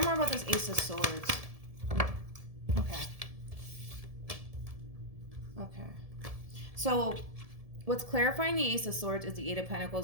more about this Ace of Swords. Okay. Okay. So what's clarifying the Ace of Swords is the Eight of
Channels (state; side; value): late; left; 1.7 ms